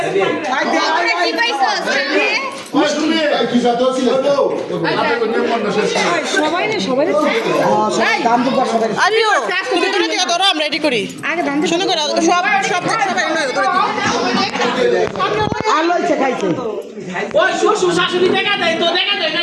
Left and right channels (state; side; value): identical; both; correlation 1.00